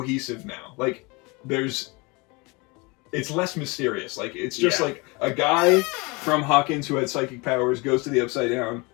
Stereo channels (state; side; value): quieter; right; 27.3 dB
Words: now. Like it's less mysterious. Like it's just like a guy from Hawkins who had psychic powers goes to the Upside Down,